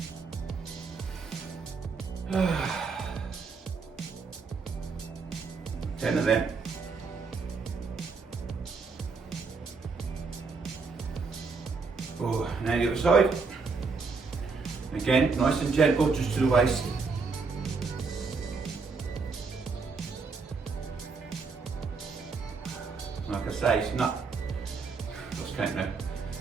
10 of them. Oh, now the other side. Again, nice and gentle, just to the waist. Like I say, it's not, lost count now.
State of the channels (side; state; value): left; quieter; 4.6 dB